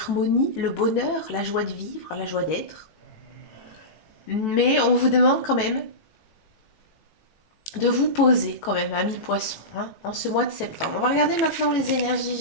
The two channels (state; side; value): late; right; 18 ms